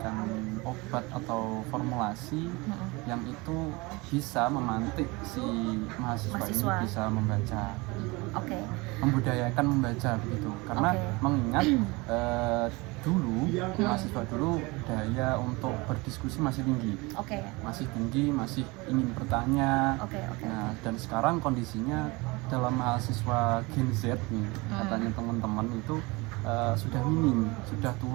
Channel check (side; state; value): left; quieter; 24.8 dB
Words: obat atau formulasi yang itu bisa memantik si mahasiswa ini bisa membaca, membudayakan membaca begitu, karena mengingat dulu mahasiswa dulu daya untuk berdiskusi masih tinggi, masih ingin bertanya. Nah, dan sekarang kondisinya dalam mahasiswa Gen Z nih, katanya teman-teman itu sudah minim, sudah